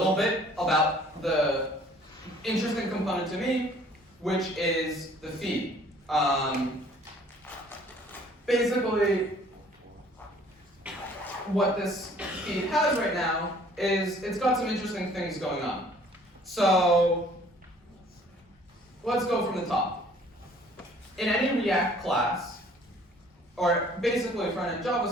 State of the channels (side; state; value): both; normal; correlation 0.56